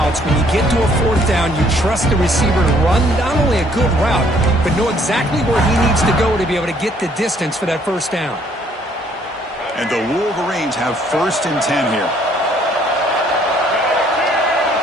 When you get to a fourth down, you trust the receiver to run not only a good route, but know exactly where he needs to go to be able to get the distance for that first down. And the Wolverines have first and 10 here.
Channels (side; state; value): both; normal; correlation 0.64